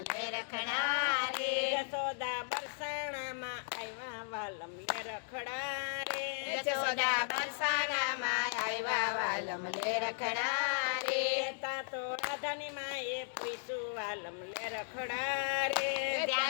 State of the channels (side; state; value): right; silent; digital silence